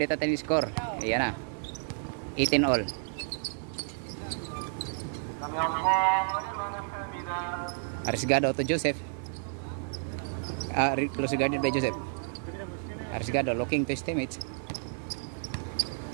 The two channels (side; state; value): left; silent; digital silence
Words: natin yung score. Ayan na. 18 all. Arriesgado to Joseph. Close guarded by Joseph. Arriesgado looking to his teammates.